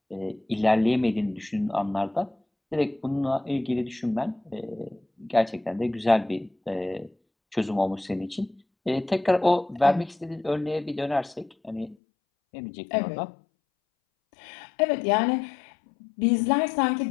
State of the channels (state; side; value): drops out; right; at 12.0 s